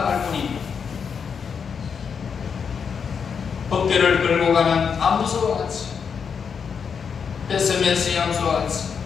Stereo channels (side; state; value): right; quieter; 6.5 dB